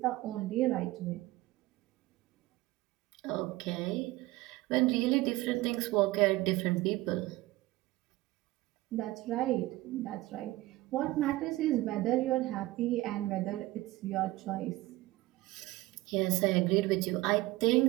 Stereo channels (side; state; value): left; quieter; 18.6 dB